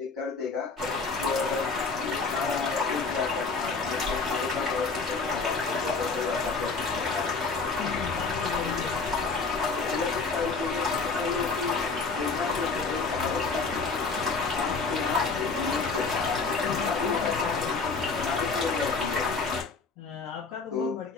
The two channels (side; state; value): right; quieter; 4.4 dB